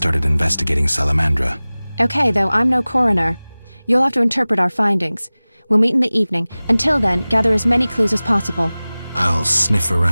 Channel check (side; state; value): both; inverted; correlation -0.99